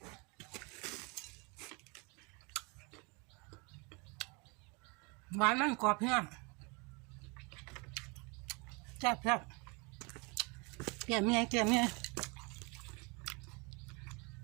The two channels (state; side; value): quieter; left; 30.0 dB